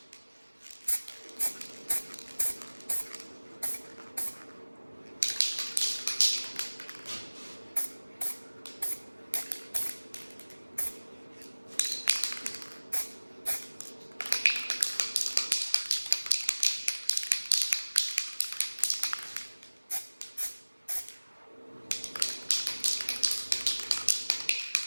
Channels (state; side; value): inverted; both; correlation -1.00